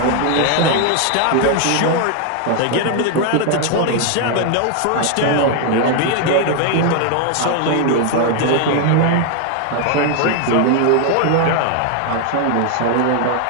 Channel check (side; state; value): both; different; correlation 0.00